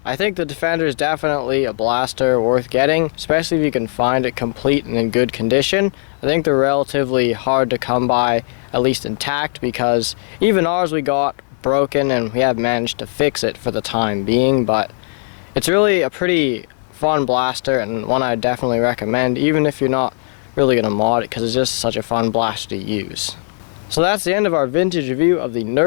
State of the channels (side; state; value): right; silent; 59 dB below the other